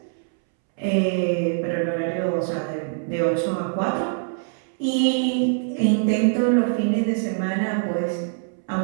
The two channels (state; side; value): silent; left; 63 dB below the other